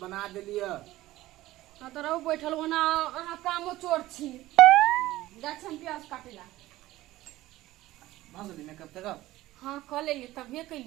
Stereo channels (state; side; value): quieter; left; 16.6 dB